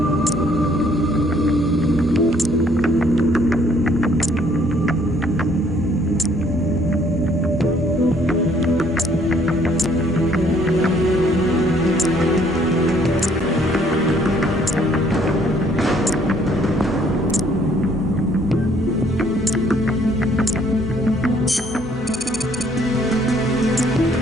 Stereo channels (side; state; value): both; normal; correlation 0.63